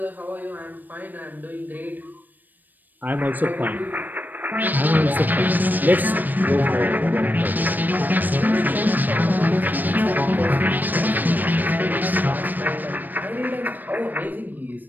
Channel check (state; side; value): late; left; 0.088 ms